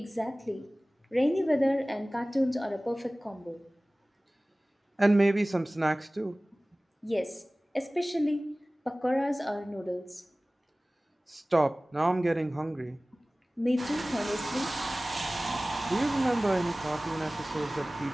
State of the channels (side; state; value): both; normal; correlation 0.98